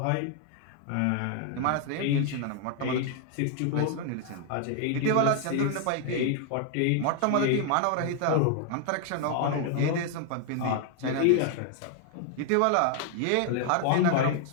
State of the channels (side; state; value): both; different; correlation 0.00